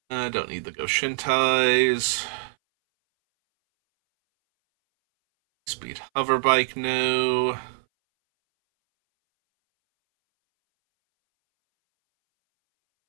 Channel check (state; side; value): silent; left; 61 dB below the other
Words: Don't need the Goshintais. Speed Hover Bike, no.